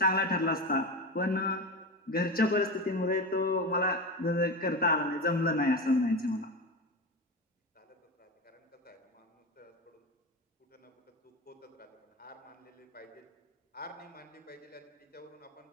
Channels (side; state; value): both; normal; correlation 0.23